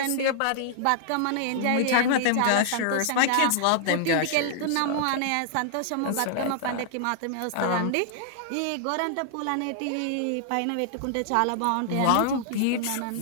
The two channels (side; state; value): both; different; correlation -0.01